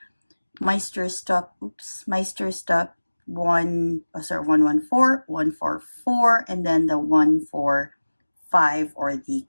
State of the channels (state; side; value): inverted; both; correlation -1.00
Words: Meisterstück 114, 144, and then the 145, or the